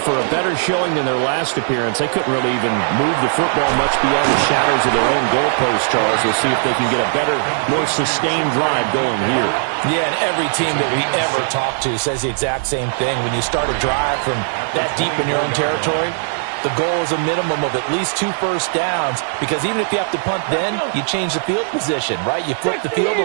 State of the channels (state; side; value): silent; left; digital silence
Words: a better showing than their last appearance. They couldn't really even move the football much beyond the shadows of their own goalpost, Charles. We'll see if they can get a better, more sustained drive going here. Yeah, and every team that we ever talk to says the exact same thing. When you start a drive from that deep in your own territory, the goal is a minimum of at least 2 first downs, because even if you have to punt then, you change the field position, right? You flip the field